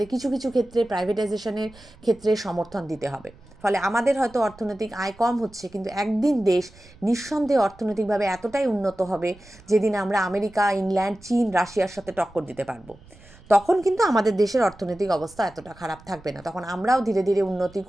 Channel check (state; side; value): noise; right; rumble, 24 dB below the sound